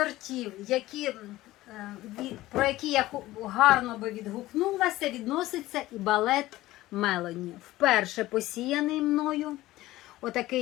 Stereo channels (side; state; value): right; quieter; 16.8 dB